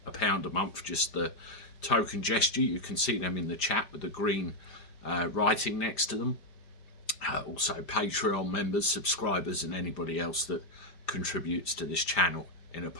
£1 a month, just the token gesture. You can see them in the chat with the green writing next to them. Also Patreon members, subscribers, and anybody else that contributes to this channel in a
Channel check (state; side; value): late; right; 5.0 ms